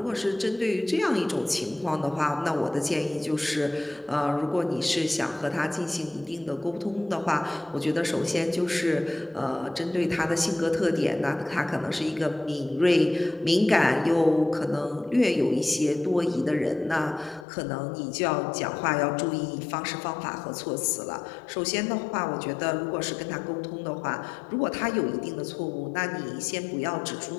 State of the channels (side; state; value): right; drops out; at 17.4 s